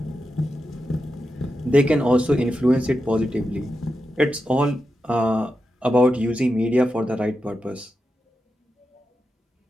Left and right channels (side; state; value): both; normal; correlation 0.89